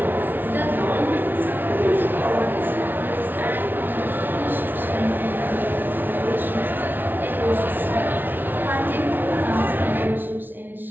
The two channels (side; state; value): left; late; 0.092 ms